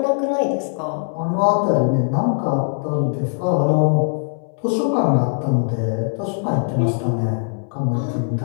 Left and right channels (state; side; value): silent; right; 65 dB below the other